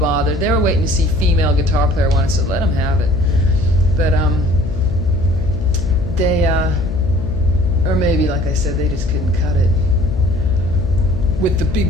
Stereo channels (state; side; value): noise; left; hum, 12 dB below the sound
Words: They were waiting to see female guitar player wanted, so let them have it. But they, or maybe, like I said, they just couldn't cut it with the